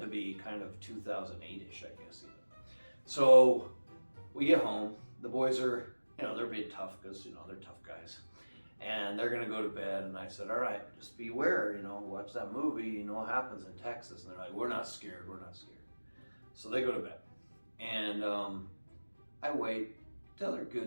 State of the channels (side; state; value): both; inverted; correlation -1.00